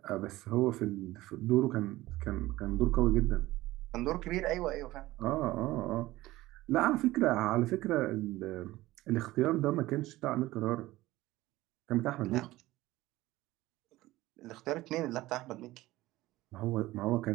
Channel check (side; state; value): left; quieter; 17.7 dB